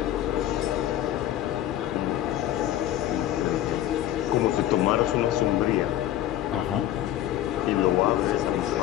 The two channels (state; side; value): quieter; right; 12.5 dB